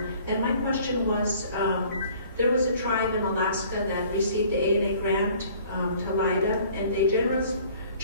And my question was, there was a tribe in Alaska that received the A&A grant, Talida, and they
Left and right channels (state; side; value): inverted; both; correlation -0.53